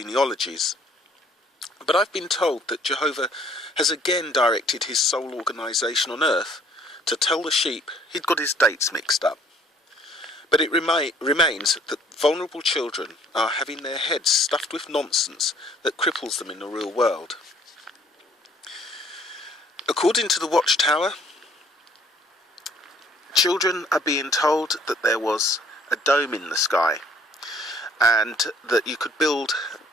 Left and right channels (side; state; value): both; normal; correlation 0.59